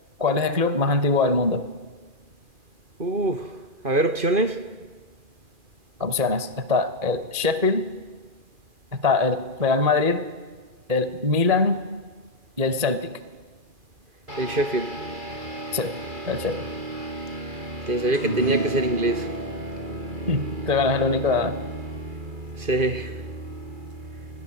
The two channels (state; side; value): late; left; 2.4 ms